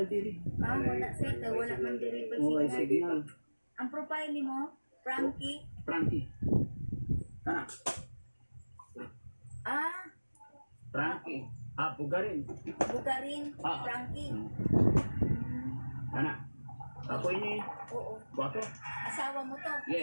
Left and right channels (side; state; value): both; inverted; correlation -1.00